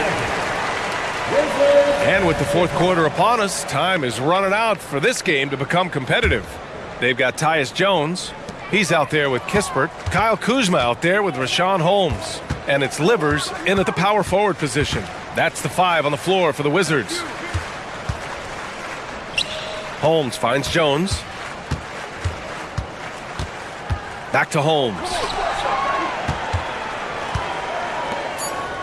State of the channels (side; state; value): both; identical; correlation 1.00